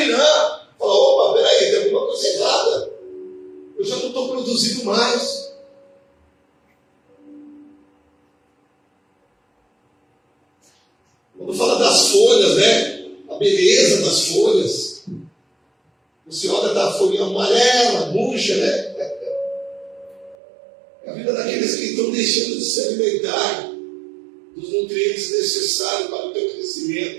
Fala, opa, peraí, tem alguma coisa errada. Eu já não estou produzindo mais. Quando fala das folhas, né? A beleza das folhas. Você olha da folhinha amarela, murcha, né? É a vida daqueles que estão deixando de se alimentar dos nutrientes necessários para o teu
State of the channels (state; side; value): drops out; left; at 20.4 s